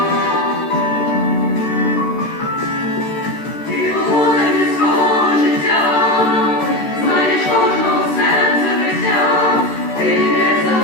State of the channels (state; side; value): late; right; 13 ms